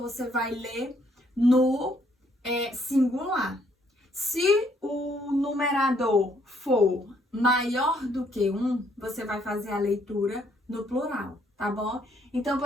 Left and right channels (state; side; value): normal; both; correlation 0.68